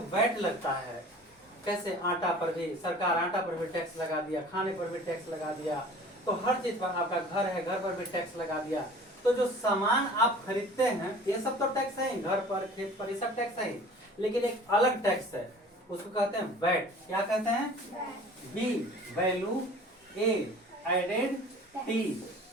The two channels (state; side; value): normal; both; correlation 0.45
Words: वैट लगता है। कैसे? आटा पर भी सरकार आटा पर भी टैक्स लगा दिया, खाने पर भी टैक्स लगा दिया, तो हर चीज पर, आपका घर है घर पर भी टैक्स लगा दिया। तो जो सामान आप खरीदते हैं ये सब तो टैक्स है ही, घर पर खेत पर ये सब टैक्स है ही, लेकिन एक अलग टैक्स है, उसको कहते हैं वैट। क्या कहते हैं? बी वैल्यू, ए एडेड, टी